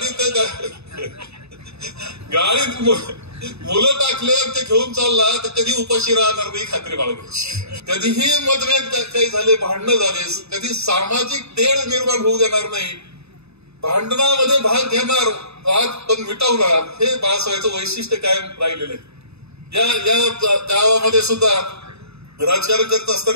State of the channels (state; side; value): late; left; 0.79 ms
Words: त्या गाडीत मुलं टाकले ते घेऊन चालला तर कधी उपाशी राहणार नाही खात्री बाळगायची. कधीही मतभेद काही झाले, भांडणं झाले, कधी सामाजिक तेढ निर्माण होऊ देणार नाही, भांडणामध्ये भाग घेणार, वाद पण मिटवणार, हे बाळासाहेबांचं वैशिष्ट्य कायम राहिलेलं आहे. या गावामध्ये सुद्धा राजकारण करत